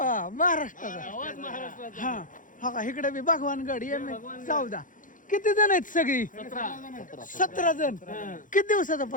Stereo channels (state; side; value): late; right; 0.38 ms